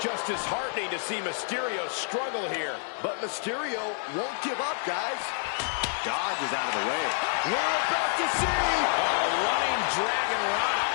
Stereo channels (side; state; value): right; silent; 57 dB below the other